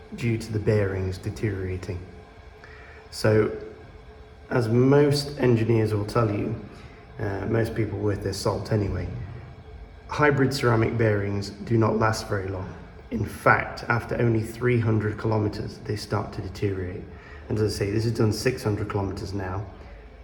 due to the bearings deteriorating. So, as most engineers will tell you, most people worth their salt anyway, hybrid ceramic bearings do not last very long. In fact, after only 300 kilometers, they start to deteriorate. And as I say, this has done 600 kilometers now,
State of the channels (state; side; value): identical; both; correlation 1.00